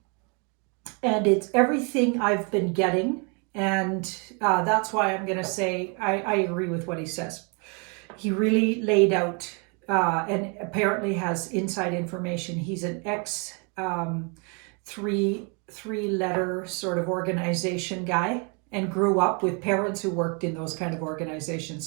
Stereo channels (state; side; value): quieter; left; 34.9 dB